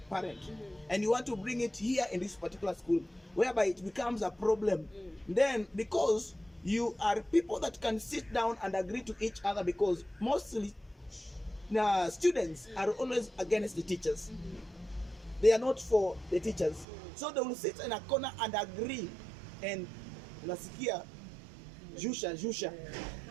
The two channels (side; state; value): left; drops out; at 16.9 s